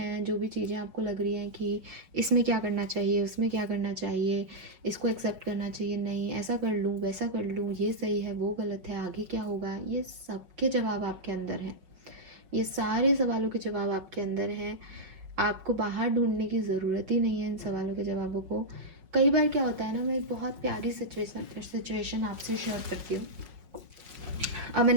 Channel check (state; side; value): late; left; 5.5 ms